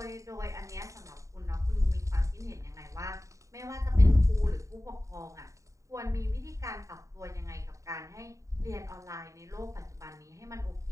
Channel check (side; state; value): left; late; 0.16 ms